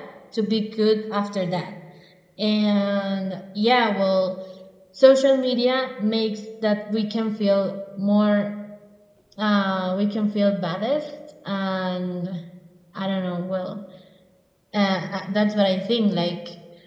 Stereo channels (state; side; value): identical; both; correlation 1.00